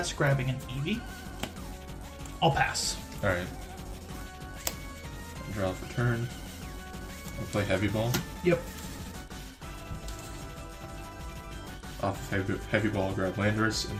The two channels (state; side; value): identical; both; correlation 1.00